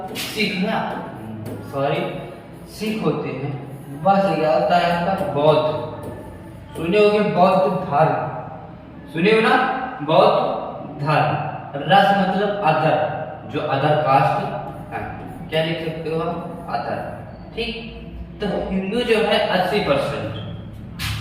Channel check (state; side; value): identical; both; correlation 1.00